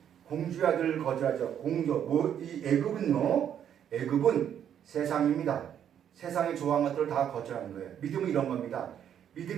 공주의 아들을 거절하죠. 이 애굽은 세상입니다. 세상이 좋아하는 것들을 다 거절하는 거예요. 믿음은 이런 겁니다.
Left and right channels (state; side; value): quieter; left; 9.4 dB